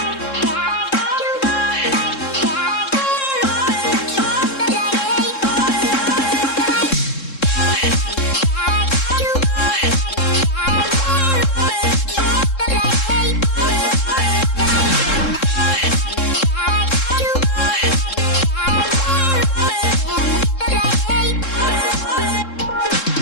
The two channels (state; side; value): late; right; 3.7 ms